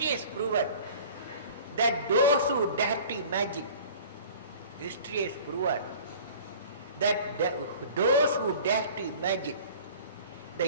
has proven that those who dare to imagine, history has proven that those who dare to imagine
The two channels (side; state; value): both; inverted; correlation -0.45